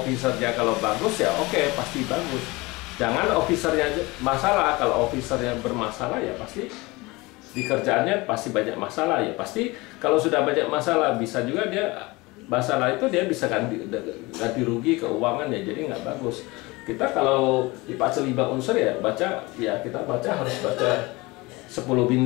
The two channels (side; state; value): right; quieter; 23.1 dB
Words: kalau bagus ya oke, pasti bagus. Jangan officernya masalah, kalau officernya bermasalah ya pasti di kerjaannya pasti banyak masalah. Ya pasti kalau sudah banyak masalah bisa juga dia masalah itu dia bisa ganti rugi keuangan ya, jadi nggak bagus. Kita kalau di Pak Tse 5 unsur ya kita baca harus baca 10